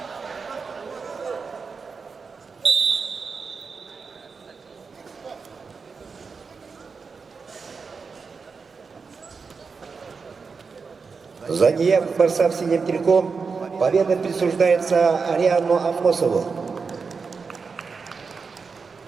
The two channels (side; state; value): left; quieter; 5.1 dB